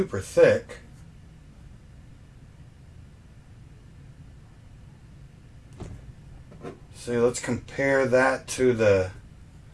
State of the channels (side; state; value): both; identical; correlation 1.00